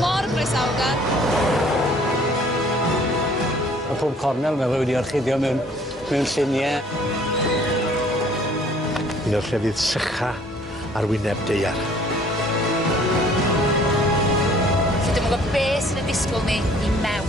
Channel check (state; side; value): normal; both; correlation 0.57